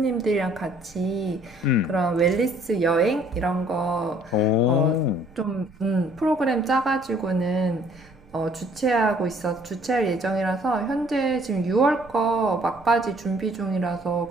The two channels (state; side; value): noise; right; rumble, 27 dB below the sound